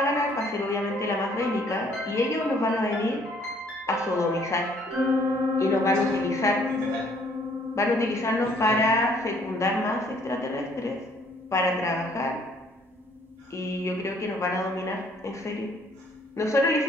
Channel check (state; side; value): normal; both; correlation 0.62